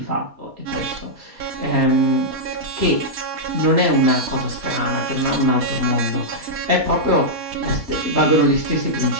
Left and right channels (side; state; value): left; late; 4.2 ms